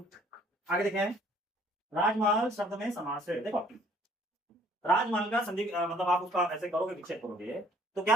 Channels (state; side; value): normal; both; correlation 0.59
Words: आगे देखें। राजमहल शब्द में समास है। देखो, राजमहल का संधि मतलब आप उसका ऐसे करोगे, विच्छेद करोगे तो